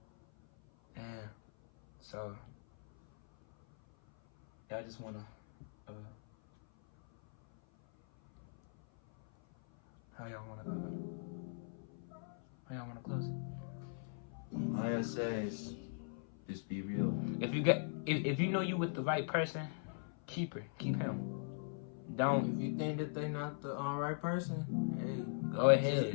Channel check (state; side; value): silent; right; 51 dB below the other